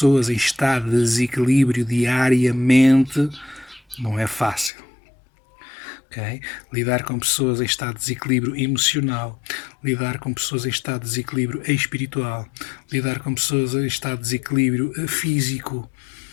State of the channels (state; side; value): drops out; right; at 4.7 s